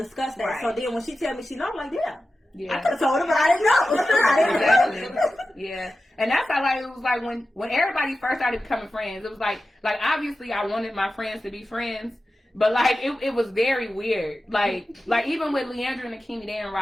that. Right. So then when she tell me she know, I'm like, yeah. I yeah. could have told her, but I didn't know. Exactly. Yeah. And that's how like it was like when everybody first started becoming friends, it was like obviously I wanted my friends to be friends, but like it was very weird. Like even with Leandra and Akimi, they in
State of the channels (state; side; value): normal; both; correlation 0.93